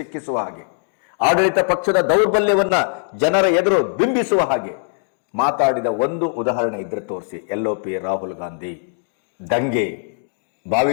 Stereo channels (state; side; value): silent; right; digital silence